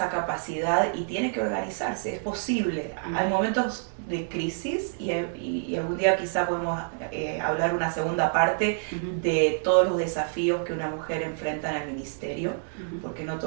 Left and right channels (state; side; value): silent; left; digital silence